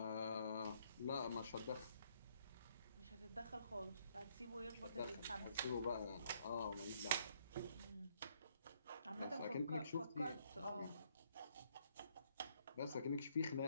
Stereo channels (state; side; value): inverted; both; correlation -0.69